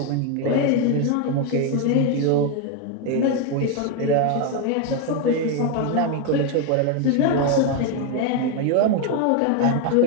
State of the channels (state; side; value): different; both; correlation 0.01